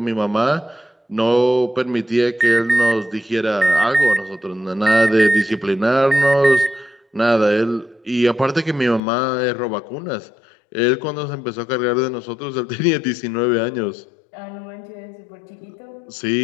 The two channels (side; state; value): right; drops out; at 9.0 s